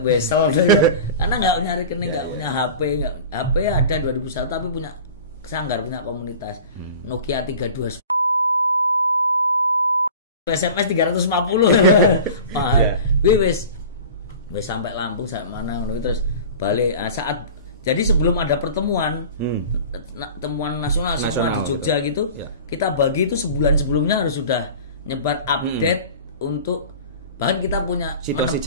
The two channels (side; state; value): both; inverted; correlation -0.38